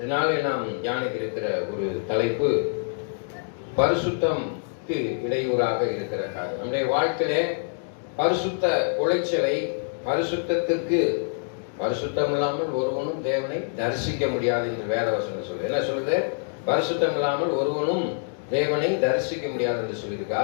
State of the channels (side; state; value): right; silent; digital silence